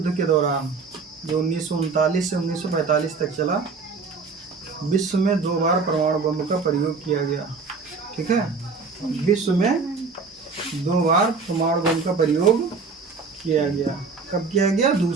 के दौरान, जो 1939 से 1945 तक चला, विश्व में 2 बार परमाणु बम का प्रयोग किया गया, ठीक है। विश्व में 2 बार परमाणु बम का प्रयोग किया गया। कब किया गया?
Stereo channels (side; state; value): left; quieter; 4.7 dB